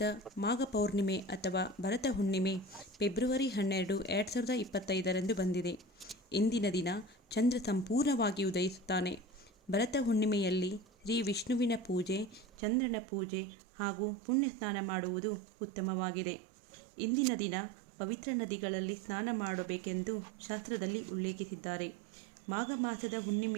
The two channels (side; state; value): left; drops out; at 12.5 s